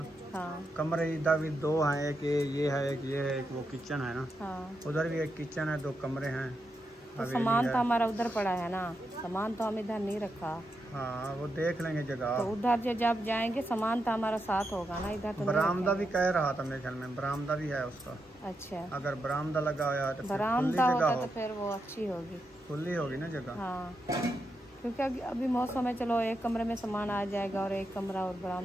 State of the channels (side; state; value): both; normal; correlation 0.85